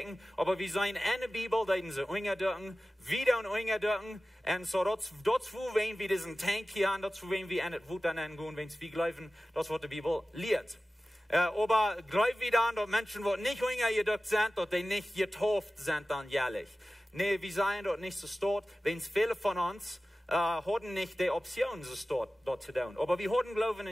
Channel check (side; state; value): both; normal; correlation 0.96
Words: Aber wir sehen in der Bibel, da sie ungedungen, wieder und ungedungen. Und so dazu wenn wir diesen Tank hier haben, dazu wenn wir in das Wuta nennen, wenn wir glauben, das was die Bibel lehrt. Aber glauben wir dann, dass Menschen, die nicht ungedungen sind, dass die nicht getauft sind dann jährlich. Nee, wir seien dort nicht so dort, wenn es viele von uns hatten nicht die Option, so dort zu tun. Aber wir hatten Glauben